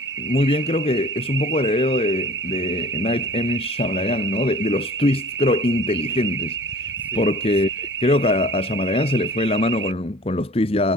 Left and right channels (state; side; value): normal; both; correlation 0.47